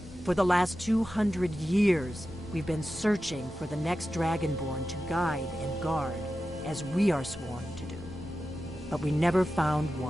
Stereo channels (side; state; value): both; normal; correlation 0.92